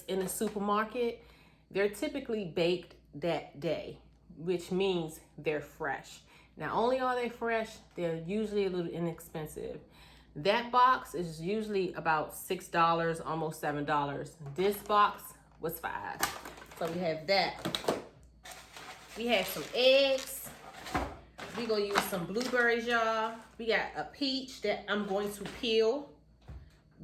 in the supermarket, they're typically baked that day, which means they're fresh. Not only are they fresh, they're usually a little inexpensive. That box is usually about $6, almost $7. This box was $5. So we have that. We have some eggs. We're gonna use some blueberries, y'all. We got a peach that I'm going to peel.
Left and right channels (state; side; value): identical; both; correlation 1.00